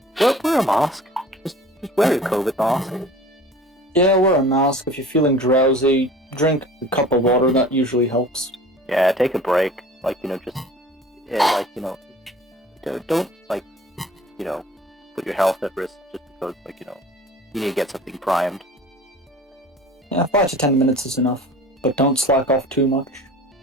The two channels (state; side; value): normal; both; correlation 0.43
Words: wear a mask. Just wear your COVID mask. Yeah, wear a mask. If you're feeling drowsy, drink a cup of water. That usually helps. Yeah, take a break. Don't put your health at risk just because, you need to get something primed. Yeah, 5 to 10 minutes is enough. But don't slack off too much.